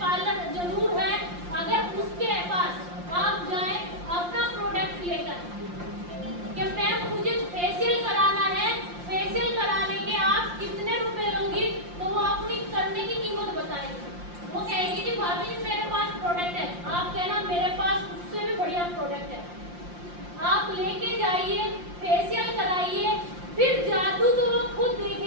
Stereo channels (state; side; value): late; left; 5.7 ms